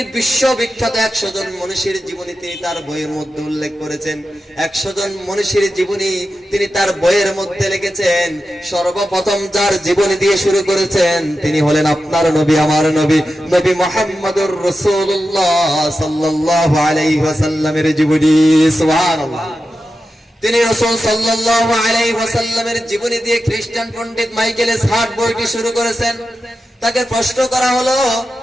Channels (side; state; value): both; normal; correlation 0.91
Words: বিশ্ববিখ্যাত 100 জন মনীষীর জীবনী তিনি তার বইয়ের মধ্যে উল্লেখ করেছেন। 100 জন মনীষীর জীবনী তিনি তার বইয়ের মধ্যে লিখেছেন। সর্বপ্রথম যার জীবনী দিয়ে শুরু করেছেন তিনি হলেন আপনার নবী, আমার নবী, নবী মুহাম্মদুর রাসূলুল্লাহ সাল্লাল্লাহু আলাইহি ওয়াসাল্লামের জীবনী। সুবহানাল্লাহ। তিনি রাসূল সাল্লাল্লাহু আলাইহি ওয়াসাল্লামের জীবনী দিয়ে খ্রিস্টান পণ্ডিত মাইকেল সার্ট বইটি শুরু করেছেন। তাকে প্রশ্ন করা হলো,